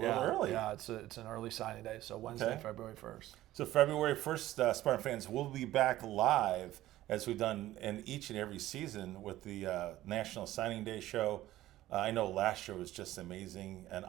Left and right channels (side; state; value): left; quieter; 15.1 dB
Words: Yeah, early. Yeah, it's an early signing day, so Wednesday, Okay. February 1st. So February 1st, Spartan fans, will be back live as we've done in each and every season with the National Signing Day show. I know last year was just amazing, and